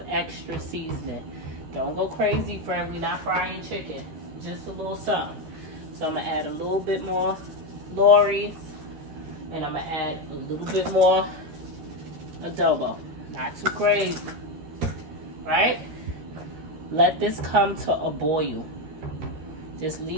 extra seasoning. Don't go crazy, friend. We're not frying chicken. Just a little something. So I'm going to add a little bit more Lorry's. And I'm going to add a little bit more adobo. Not too crazy. Right? Let this come to a boil. Just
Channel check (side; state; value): left; late; 13 ms